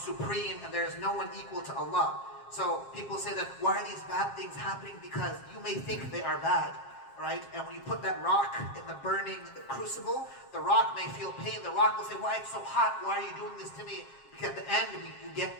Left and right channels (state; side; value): late; right; 7.4 ms